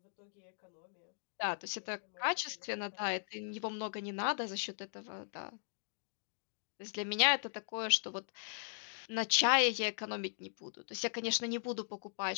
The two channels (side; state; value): right; silent; digital silence